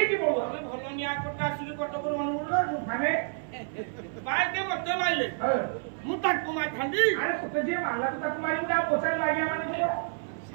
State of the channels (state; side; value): silent; left; 58 dB below the other